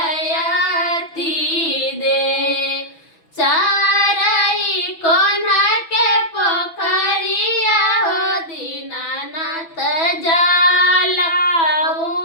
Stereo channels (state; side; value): late; right; 6.1 ms